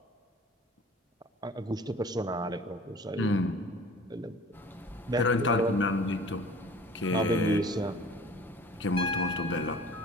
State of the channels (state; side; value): normal; both; correlation 0.46